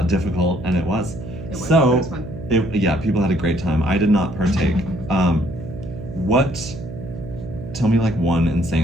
difficult, and it was. It was. So, It was fun. Yeah, people had a great time. I did not partake. Tell me like one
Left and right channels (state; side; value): noise; right; hum, 10 dB below the sound